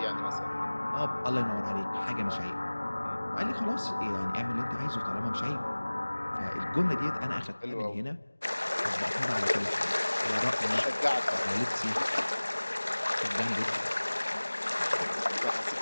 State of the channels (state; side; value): inverted; both; correlation -1.00